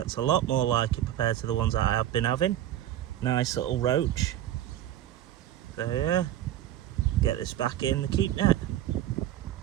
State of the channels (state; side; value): quieter; left; 12.3 dB